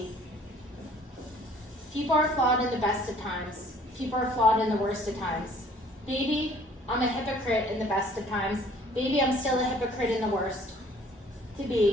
People are flawed in the best of times. People are flawed in the worst of times. Baby, I'm a hypocrite in the best of times. Baby, I'm still a hypocrite in the worst. To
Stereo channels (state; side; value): normal; both; correlation 0.55